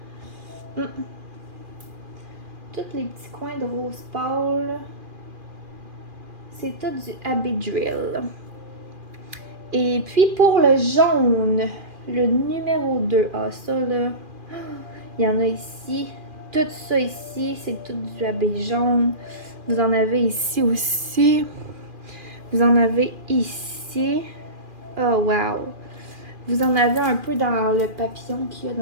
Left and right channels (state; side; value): late; left; 2.4 ms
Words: Tous les petits coins de rose pâle, c'est tout du AB Drill. Et puis pour le jaune, le numéro 2, ah ça là, il y en a ici. Tout ça ici, c'est tout du AB jaune. Vous en avez ici aussi. Vous en avez ici. Oh wow! Vous en avez un peu dans le papillon qu'il y a